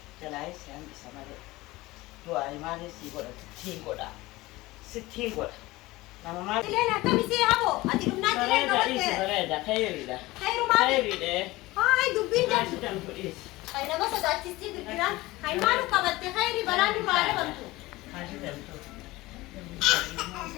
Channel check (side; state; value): right; quieter; 19.7 dB